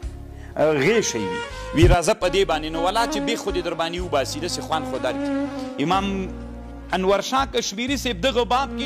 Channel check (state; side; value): identical; both; correlation 1.00